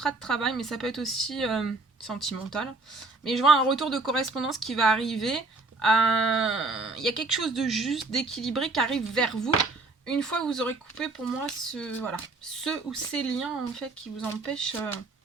de travail, mais ça peut être aussi sentimental. Mais je vois un retour de correspondance qui va arriver. Il y a quelque chose de juste, d'équilibré qui arrive vers vous. Une fois que vous aurez coupé pour moi ce ou ces liens en fait qui vous empêchent.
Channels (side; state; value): left; quieter; 3.4 dB